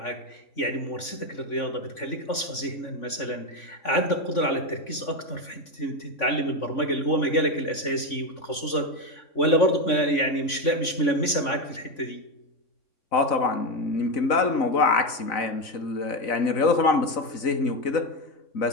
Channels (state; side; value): late; right; 3.5 ms